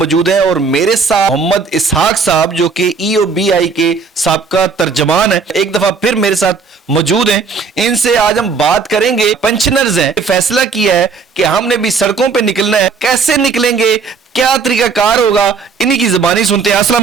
हैं और मेरे साथ मोहम्मद इसहाक साहब जो कि EOBI के साबका तर्जमान है, एक दफा फिर मेरे साथ मौजूद हैं। इनसे आज हम बात करेंगे। पेंशनर्स हैं, फैसला किया है कि हमने भी सड़कों पर निकलना है। कैसे निकलेंगे, क्या तरीकाकार होगा, इन्हीं की जुबानी सुनते हैं। अस्सलाम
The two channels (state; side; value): quieter; left; 5.0 dB